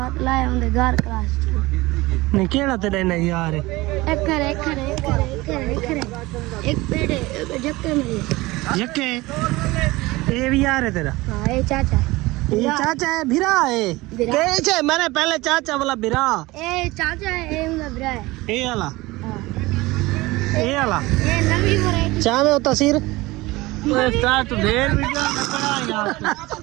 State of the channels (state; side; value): quieter; left; 20.6 dB